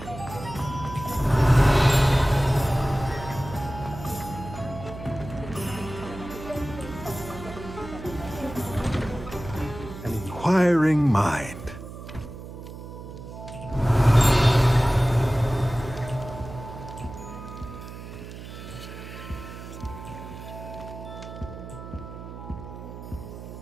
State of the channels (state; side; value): noise; right; hum, 12 dB below the sound